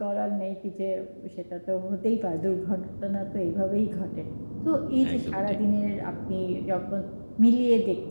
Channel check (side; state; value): both; inverted; correlation -1.00